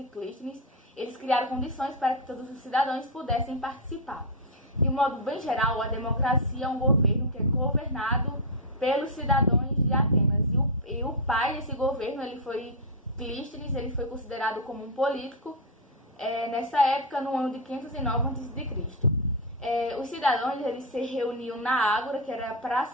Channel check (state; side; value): normal; both; correlation 0.02